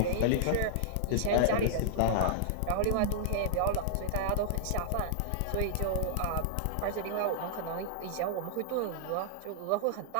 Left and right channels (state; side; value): different; both; correlation -0.01